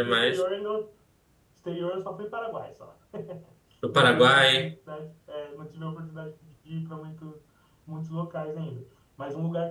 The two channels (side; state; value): both; identical; correlation 1.00